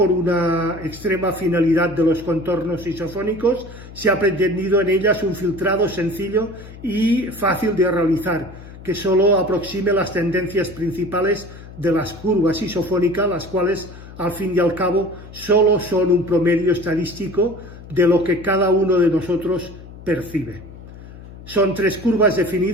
una extrema finalidad de los contornos isofónicos, se ha pretendido en ellas un filtrado sencillo y fácil de realizar, que solo aproxime las tendencias principales de las curvas isofónicas, las cuales, al fin y al cabo, solo son un promedio estadístico de lo que cada uno de nosotros percibe. Son 3 curvas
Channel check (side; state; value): left; noise; hum, 16 dB below the sound